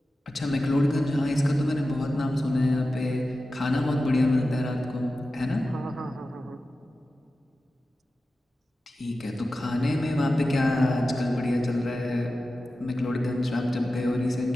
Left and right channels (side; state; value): both; normal; correlation 0.93